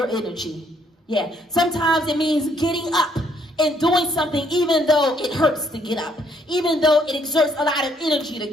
energy. Yeah. Sometimes it means getting up and doing something even though it hurts to get up, even though it exerts a lot of energy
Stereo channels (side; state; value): both; normal; correlation 0.68